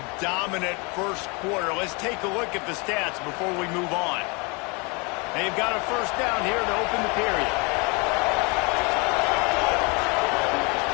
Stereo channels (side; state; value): right; quieter; 30.1 dB